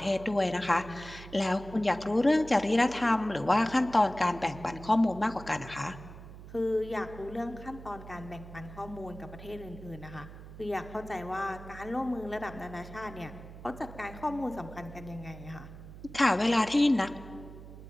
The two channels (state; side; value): noise; right; hum, 15 dB below the sound